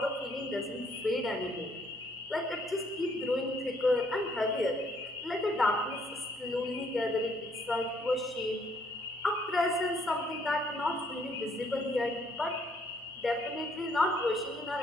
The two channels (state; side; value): normal; both; correlation 0.67